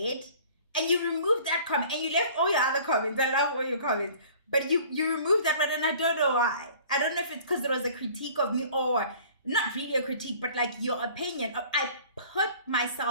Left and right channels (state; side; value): inverted; both; correlation -0.49